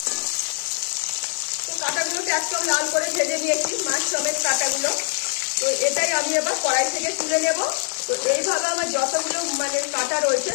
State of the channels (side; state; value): right; silent; digital silence